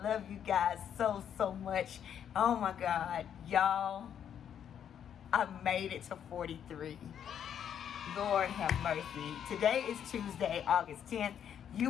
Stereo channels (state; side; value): quieter; right; 9.0 dB